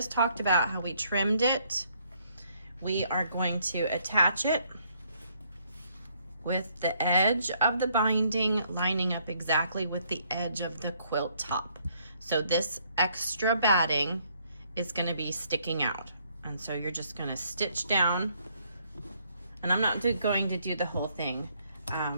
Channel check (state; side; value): inverted; both; correlation -0.68